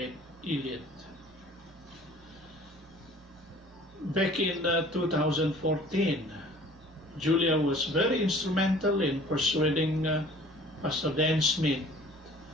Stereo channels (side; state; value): both; normal; correlation 0.49